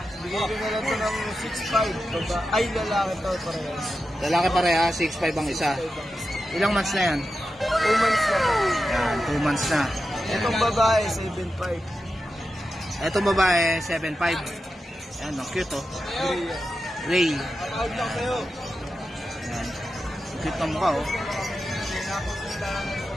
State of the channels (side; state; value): both; normal; correlation 0.90